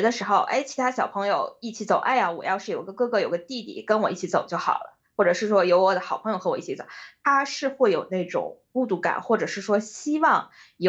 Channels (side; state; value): both; identical; correlation 1.00